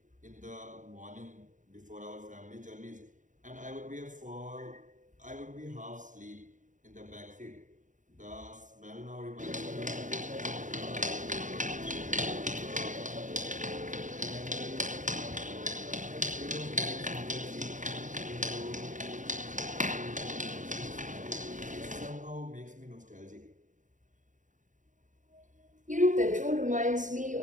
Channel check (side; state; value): left; late; 0.37 ms